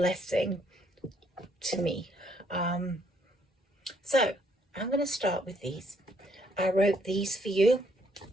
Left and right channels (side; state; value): both; normal; correlation 0.69